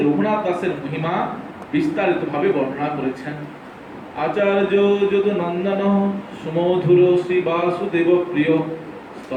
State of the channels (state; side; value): identical; both; correlation 1.00